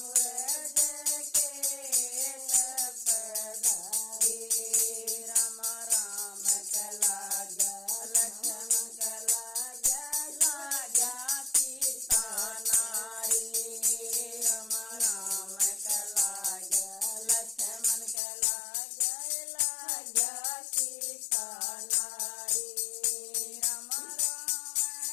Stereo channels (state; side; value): drops out; right; at 18.2 s